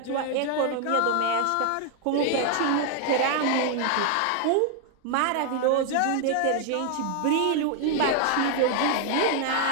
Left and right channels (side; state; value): both; different; correlation 0.00